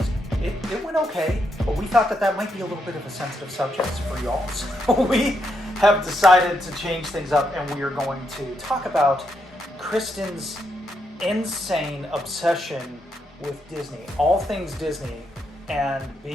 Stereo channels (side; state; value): both; normal; correlation 0.80